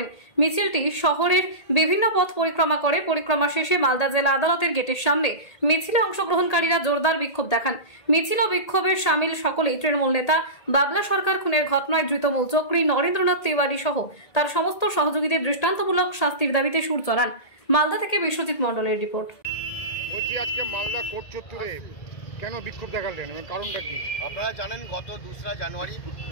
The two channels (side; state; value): right; late; 1.8 ms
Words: মিছিলটি শহরের বিভিন্ন পথ পরিক্রমা করে পরিক্রমা শেষে মালদা জেলা আদালতের গেটের সামনে মিছিলে অংশগ্রহণকারীরা জোরদার বিক্ষোভ দেখান। মিছিল ও বিক্ষোভের সামিল সকলেই তৃণমূল নেতা বাবলা সরকার খুনের ঘটনায় ধৃত মূল চক্রী নরেন্দ্রনাথ তিওয়ারি সহ তার সমস্ত সহযোগীদের দৃষ্টান্তমূলক শাস্তির দাবিতে সুর চড়ান। মালদা থেকে বিশ্বজিৎ মণ্ডলের রিপোর্ট। বলছি, আজকে মালদা কোর্ট চত্বরে কেন বিক্ষোভ দেখালেন এবং কারণটা কি? আপনারা জানেন, গত 2রা জানুয়ারি